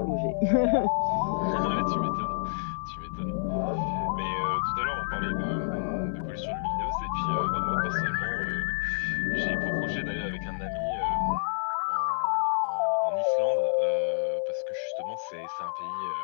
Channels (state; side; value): silent; right; 59 dB below the other